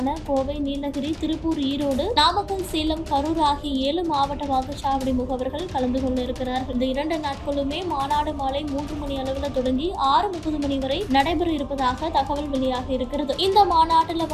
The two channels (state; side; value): identical; both; correlation 1.00